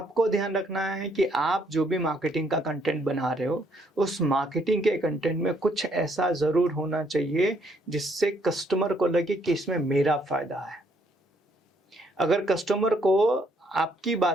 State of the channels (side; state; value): both; normal; correlation 0.69